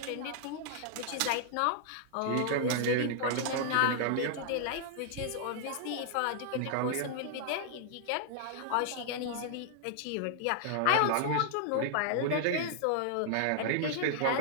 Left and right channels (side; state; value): both; different; correlation -0.01